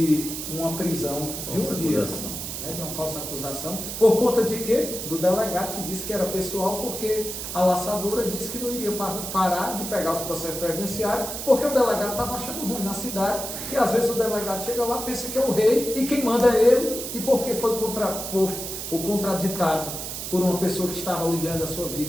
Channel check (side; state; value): right; noise; hiss, 6 dB below the sound